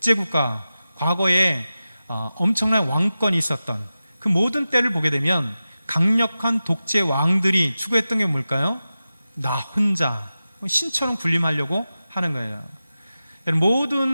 과거에 엄청난 왕권이 있었던 그 모든 때를 보게 되면 강력한 독재 왕들이 추구했던 게 뭘까요? 나 혼자 신처럼 군림하려고 하는 거예요.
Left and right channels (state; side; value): inverted; both; correlation -0.94